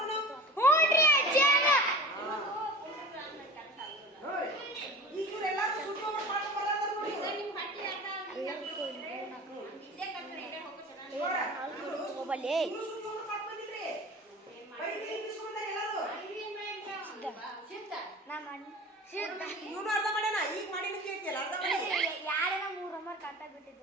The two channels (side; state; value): both; normal; correlation 0.37